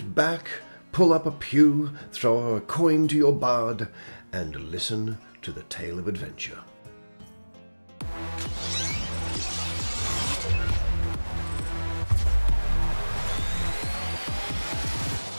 back, pull up a pew, throw a coin to your bard, and listen to the tale of adventure.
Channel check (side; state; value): both; inverted; correlation -1.00